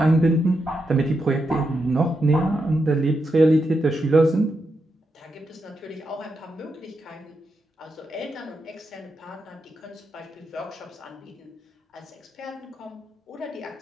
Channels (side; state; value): both; normal; correlation 0.85